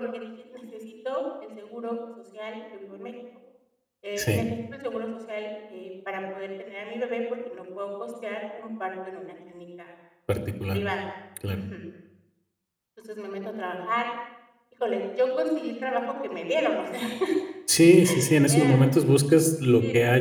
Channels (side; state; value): both; identical; correlation 1.00